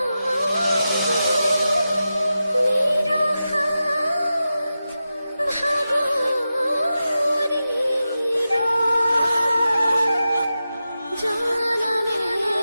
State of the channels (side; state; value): both; inverted; correlation -0.91